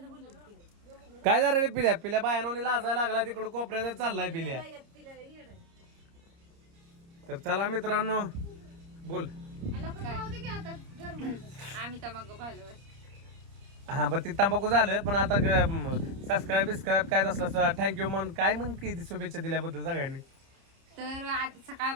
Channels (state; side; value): late; left; 30 ms